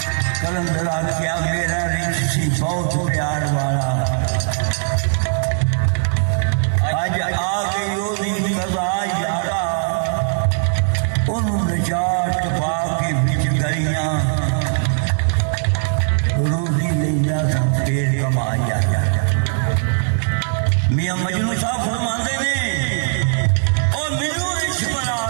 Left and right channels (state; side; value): silent; left; 66 dB below the other